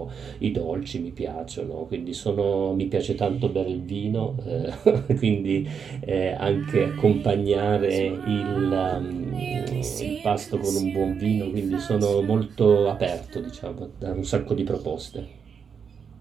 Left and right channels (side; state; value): left; quieter; 6.6 dB